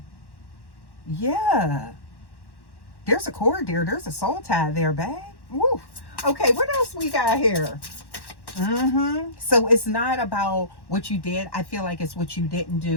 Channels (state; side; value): late; right; 1.1 ms